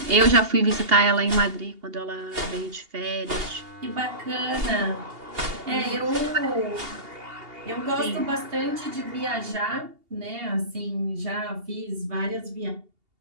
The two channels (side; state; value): left; late; 2.8 ms